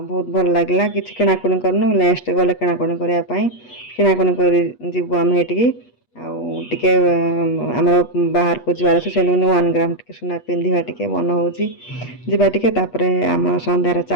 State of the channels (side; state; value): right; late; 8.3 ms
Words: भल लगे कि किणाकुणी करनु नेक्स्ट गले किणाकुणी करने किणाकुणी कर आम ये आउे आम बाहर को जबार अच्छे से 1 ग्राम टे सुना पिंधा टे मन हो जावाटे आम सन्धार